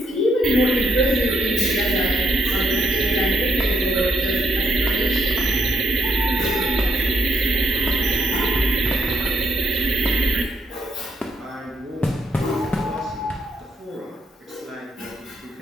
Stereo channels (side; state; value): both; normal; correlation 0.74